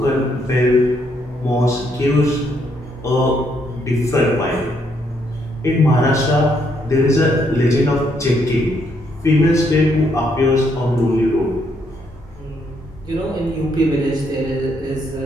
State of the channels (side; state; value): both; normal; correlation 0.73